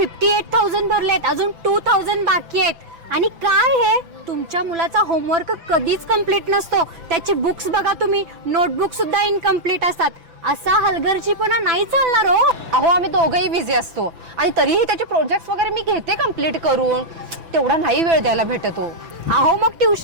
भरलेत अजून 2,000 बाकी आहेत. आणि काय हे तुमच्या मुलाचा होमवर्क कधीच कंप्लीट नसतो. त्याची बुक्स बघा तुम्ही नोटबुक सुद्धा इनकम्प्लीट असतात. असा हलगर्जीपणा नाही चालणार हो. अहो आम्ही दोघंही बिझी असतो आणि तरीही त्याचे प्रोजेक्ट्स वगैरे मी घेते कम्प्लीट करून. तेवढा नाही वेळ द्यायला भेटतो. अहो मग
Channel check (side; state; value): left; late; 6.0 ms